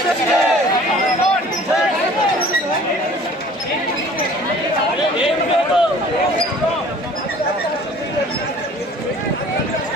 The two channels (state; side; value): normal; both; correlation 0.49